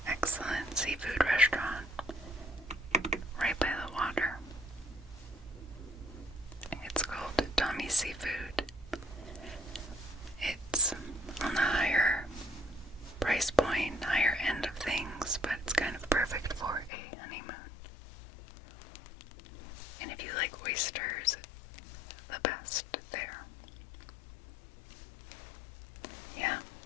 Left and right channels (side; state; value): right; drops out; at 16.9 s